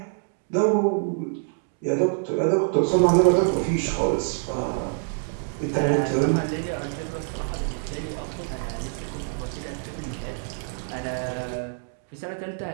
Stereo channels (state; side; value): silent; left; 61 dB below the other